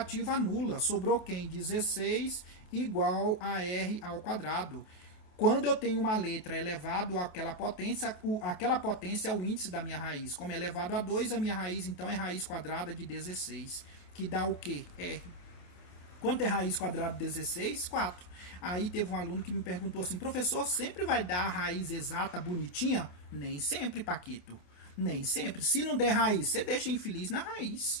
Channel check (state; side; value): late; right; 28 ms